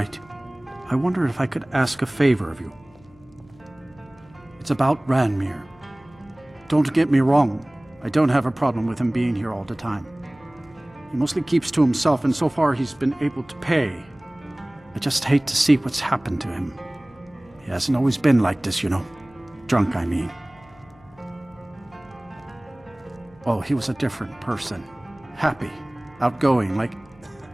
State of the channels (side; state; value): left; noise; hum, 27 dB below the sound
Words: I wonder if I could ask a favor of you. It's about Ranmir. Don't get me wrong, I don't have a problem with him being here all the time. He mostly keeps to himself, and so far he's been able to pay. I just hate to see what's happened to him. He hasn't always been like this, you know. Drunk, I mean. Oh, he was a different person. Happy, outgoing, like